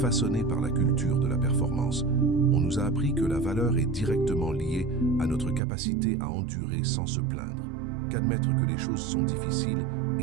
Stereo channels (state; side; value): drops out; left; at 5.6 s